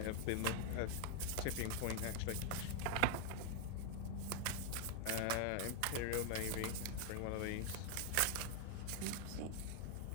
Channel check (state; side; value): different; both; correlation 0.00